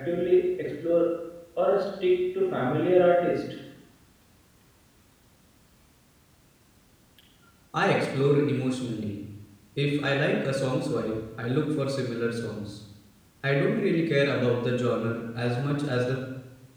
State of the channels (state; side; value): identical; both; correlation 1.00